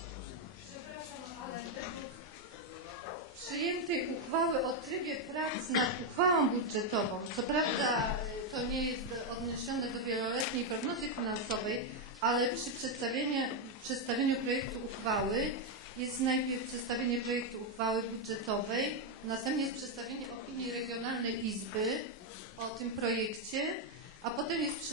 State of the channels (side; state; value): both; normal; correlation 0.03